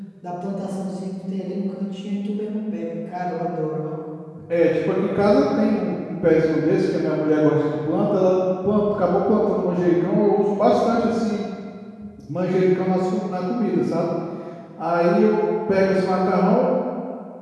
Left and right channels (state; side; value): identical; both; correlation 1.00